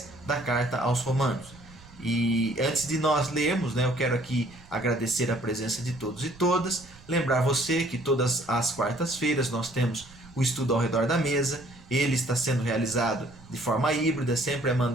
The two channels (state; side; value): noise; right; rumble, 23 dB below the sound